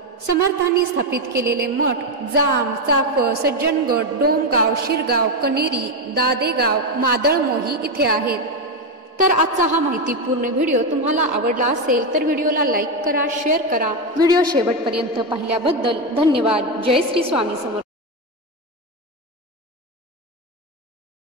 समर्थांनी स्थापित केलेले मठ जाम, चाफळ, सज्जनगड, डोमगाव, शिरगाव, कनेरी, दादेगाव, मादळमोही इथे आहेत. तर आजचा हा माहितीपूर्ण व्हिडिओ तुम्हाला आवडला असेल तर व्हिडिओला लाईक करा, शेअर करा. व्हिडिओ शेवटपर्यंत पाहिल्याबद्दल धन्यवाद. जय श्री स्वामी समर्थ.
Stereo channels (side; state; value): both; normal; correlation 0.09